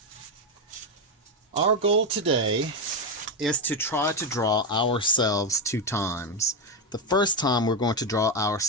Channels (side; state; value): both; normal; correlation 0.08